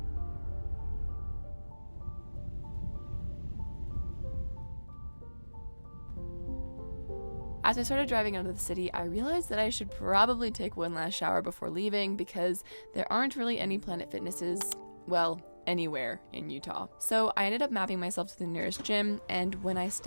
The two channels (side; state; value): both; inverted; correlation -1.00